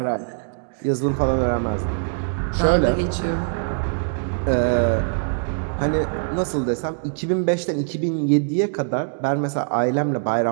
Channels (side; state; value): left; silent; digital silence